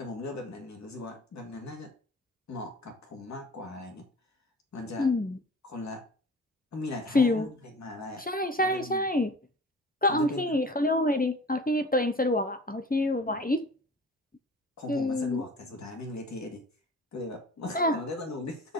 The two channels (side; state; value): both; normal; correlation 0.42